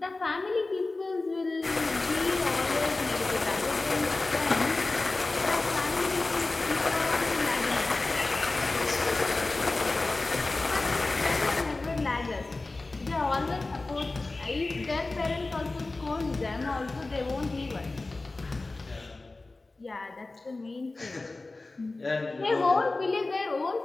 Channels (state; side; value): quieter; right; 3.3 dB